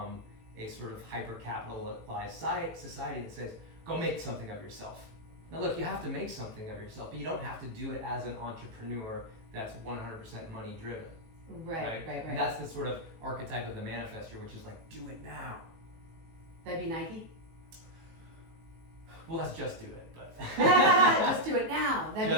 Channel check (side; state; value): left; late; 18 ms